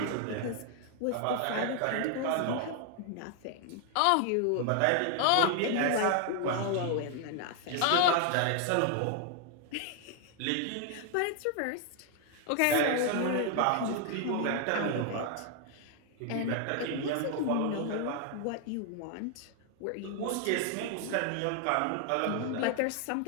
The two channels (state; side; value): different; both; correlation 0.00